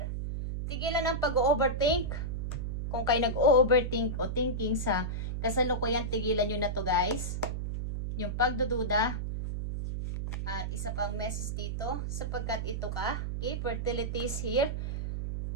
Tigilan ang pag-overthink. Kung kayo nag-overthink o thinking sa kasalukuyan, tigilan nyo na to guys. Yung pagdududa. At isa pang message dito, sapagkat ito ka. Okay? Fertility is here.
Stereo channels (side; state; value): right; noise; hum, 3 dB below the sound